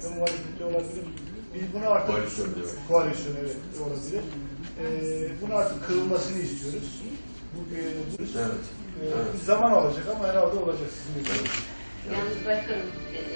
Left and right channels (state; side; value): inverted; both; correlation -1.00